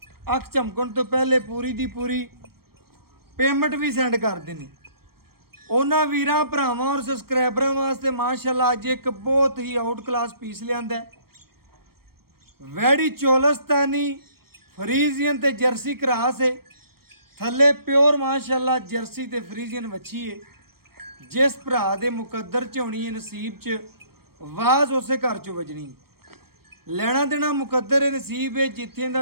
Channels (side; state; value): left; late; 0.94 ms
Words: ਅੱਖ ਝਮਕਣ ਤੋਂ ਪਹਿਲੇ ਪੂਰੀ ਦੀ ਪੂਰੀ ਪੇਮੈਂਟ ਵੀ ਸੈਂਡ ਕਰਦੇ ਨੇ। ਉਹਨਾਂ ਵੀਰਾਂ ਭਰਾਵਾਂ ਔਰ ਸਬਸਕ੍ਰਾਈਬਰਾਂ ਵਾਸਤੇ ਮਾਸ਼ਾਅੱਲਾ ਅੱਜ ਇੱਕ ਬਹੁਤ ਹੀ ਆਊਟ ਕਲਾਸ ਪੀਸ ਲਿਆਂਦਾ। वैड़ी चोलस्तानी फ्रीजियन ते जर्सी क्रास है, थले प्योर माशाअल्लाह जर्सी ते फ्रीजियन वच्छी है। जिस भरा दे मुकद्दर च होनी है नसीब च वाज उसे घर चो वजनी। लेना देना मुकद्दर है नसीब है, जिथे